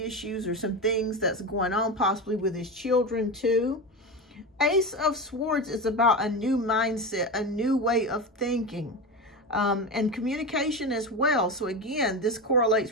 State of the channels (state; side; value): normal; both; correlation 0.21